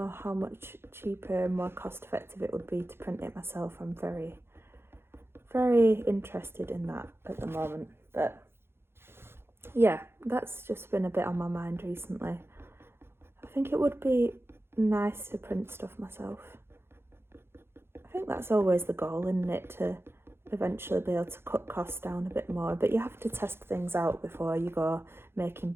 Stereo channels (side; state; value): left; late; 0.11 ms